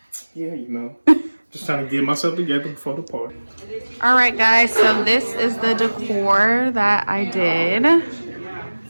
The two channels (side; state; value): both; inverted; correlation -1.00